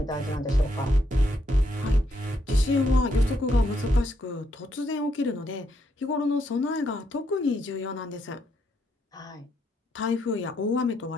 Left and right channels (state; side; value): normal; both; correlation 0.76